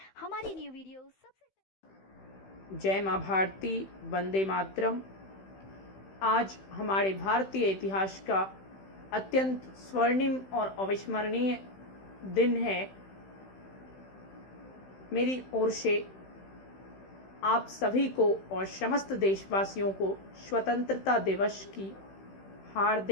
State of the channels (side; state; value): right; late; 16 ms